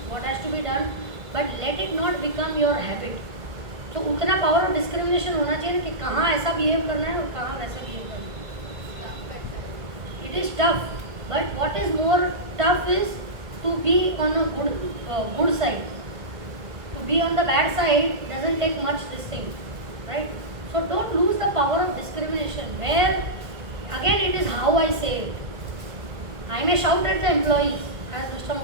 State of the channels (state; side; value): late; left; 1.9 ms